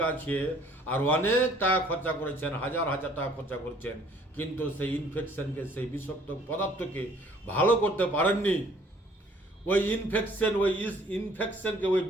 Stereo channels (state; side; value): normal; both; correlation 0.58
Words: আছে আর অনেক টাকা খরচা করেছেন, হাজার হাজার টাকা খরচা করেছেন, কিন্তু সেই ইনফেকশনকে, সেই বিষাক্ত পদার্থকে ভালো করতে পারেননি, ওই ইনফেকশনকে, ওই